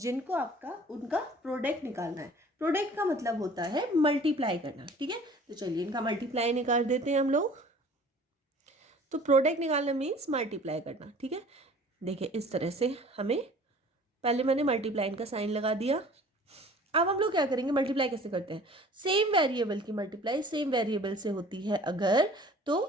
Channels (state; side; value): normal; both; correlation 0.48